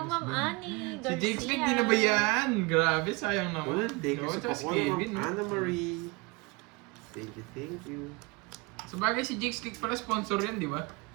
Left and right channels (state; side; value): quieter; left; 27.0 dB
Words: Miss Ma'am Ben. Annie Si Garcia. Jake Smith, di na ba yan? Grabe, sayang naman. Thank you Oo, sa tsaka si pakuha, Kevin, Ma'am no? Anna Marie. Thank you. Sa bagay, si Jake Stick pala sponsor yan, di ba?